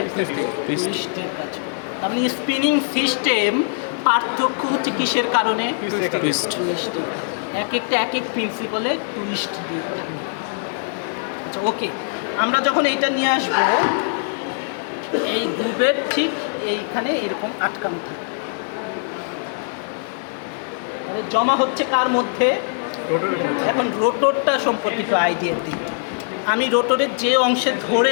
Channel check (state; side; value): silent; right; digital silence